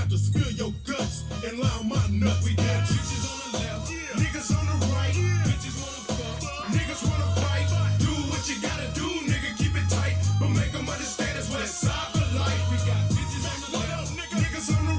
to spill your guts and lie on my nuts. We got bitches on the left, niggas on the right, bitches wanna fuck, niggas wanna fight. Do what you gotta do, nigga, keep it tight, but make them understand it's West Side for life. We got bitches on the left, niggas on the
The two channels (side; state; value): both; identical; correlation 1.00